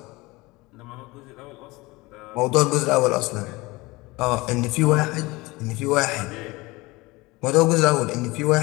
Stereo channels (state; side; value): quieter; right; 22.3 dB